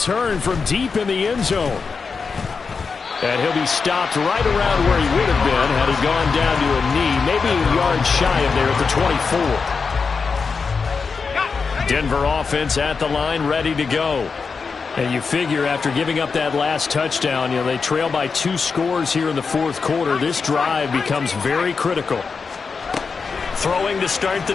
from deep in the end zone. And he'll be stopped right around where he would have been had he gone down to a knee, maybe a yard shy of there at the 24. Denver offense at the line, ready to go. And you figure after giving up that last touchdown, you know, they trail by 2 scores here in the 4th quarter. This drive becomes very critical. Throwing to start the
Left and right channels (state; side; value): quieter; right; 5.1 dB